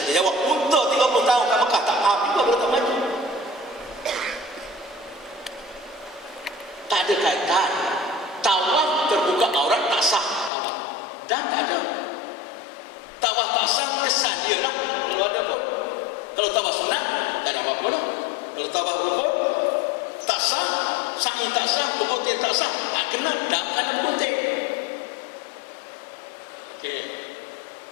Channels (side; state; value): right; drops out; at 10.5 s